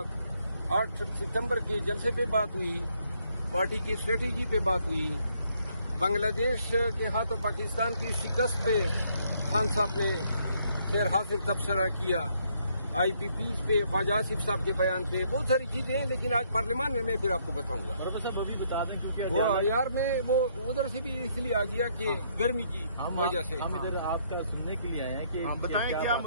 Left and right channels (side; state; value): both; inverted; correlation -0.70